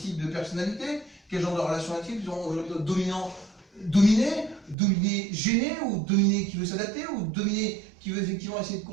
de personnalité? Quel genre de relation intime? Dominant, dominé, gêné, ou dominé qui veut s'adapter, ou dominé qui veut effectivement essayer de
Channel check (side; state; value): left; drops out; at 4.8 s